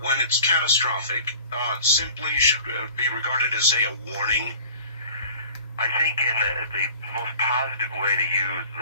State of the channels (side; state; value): both; inverted; correlation -0.44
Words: it's catastrophic, simply should be regarded as, say, a warning? I think in the most positive way to use